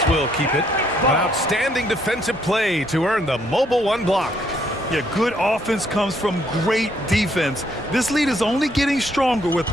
will keep it. An outstanding defensive play to earn the mobile 1 block. Yeah, good offense comes from great defense. This lead is only getting stronger with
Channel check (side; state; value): both; normal; correlation 0.70